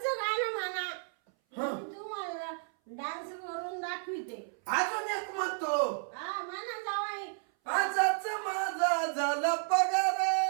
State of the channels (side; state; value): left; silent; 56 dB below the other